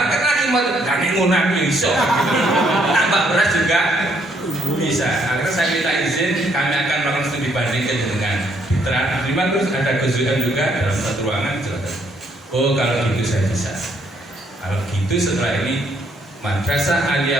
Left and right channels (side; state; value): both; normal; correlation 0.70